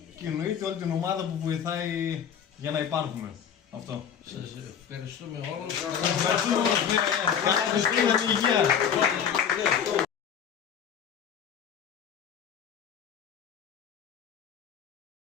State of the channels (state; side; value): quieter; right; 8.1 dB